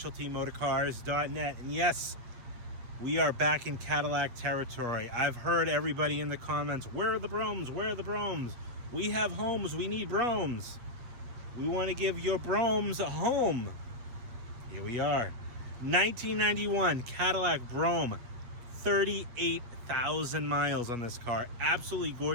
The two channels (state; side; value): late; left; 8.5 ms